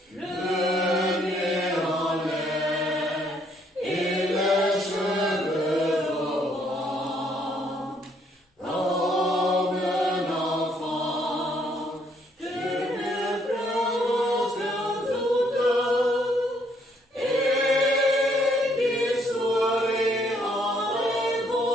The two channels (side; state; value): both; normal; correlation 0.68